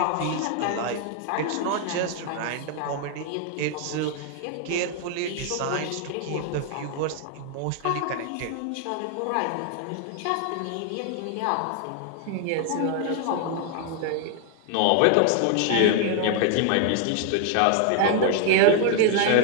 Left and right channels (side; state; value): both; different; correlation 0.00